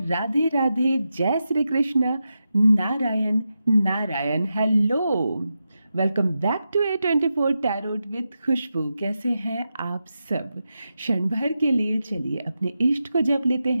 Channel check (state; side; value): inverted; both; correlation -0.89